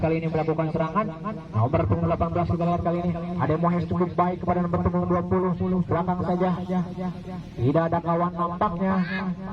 Kali ini melakukan serangan. Nomor punggung 18 kita lihat kali ini ada Mohes cukup baik kepada nomor punggung 20, belakang saja, tidak ada kawan nampaknya.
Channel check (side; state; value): both; identical; correlation 1.00